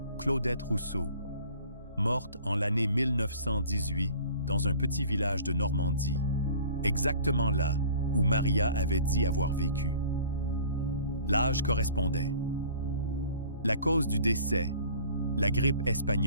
Claudette Rousseau, morte en l'année 1918 dans un petit village de Normandie, exactement là où Maria avait dit avoir vécu. L'âge correspondait. La cause du décès, la grippe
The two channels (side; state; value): both; inverted; correlation -0.47